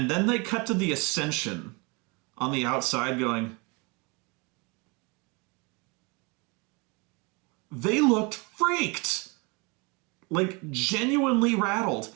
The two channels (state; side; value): quieter; left; 29.2 dB